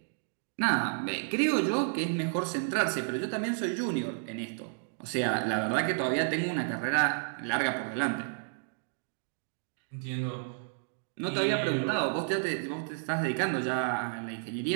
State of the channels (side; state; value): left; silent; digital silence